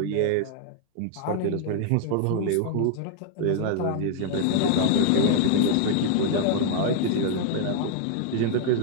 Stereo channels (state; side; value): different; both; correlation 0.00